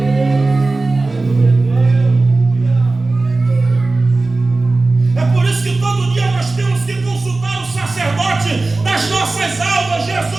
É por isso que todo dia nós temos que consultar o sacerdote das nossas almas.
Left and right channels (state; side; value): quieter; left; 3.3 dB